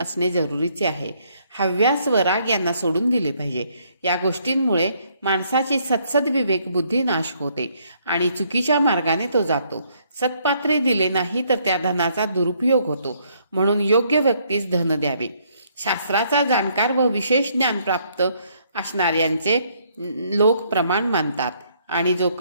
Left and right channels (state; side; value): inverted; both; correlation -0.68